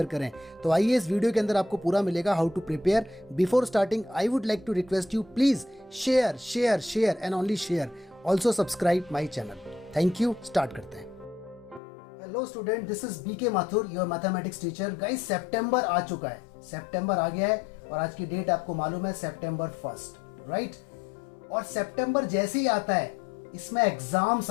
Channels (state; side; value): drops out; right; at 11.8 s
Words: करें। तो आइए इस वीडियो के अंदर आपको पूरा मिलेगा how to prepare. Before starting I would like to request you, please share share share and only share. Also subscribe my channel. Thank you. Start करते हैं। Hello student, this is BK Mathur, your mathematics teacher. Guys, सितंबर आ चुका है, सितंबर आ गया है और आज की डेट आपको मालूम है सितंबर 1, राइट। और सितंबर जैसे ही आता है इसमें एग्जाम्स